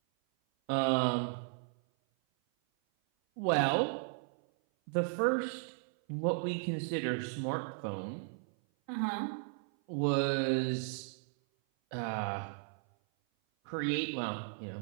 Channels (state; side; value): silent; left; 54 dB below the other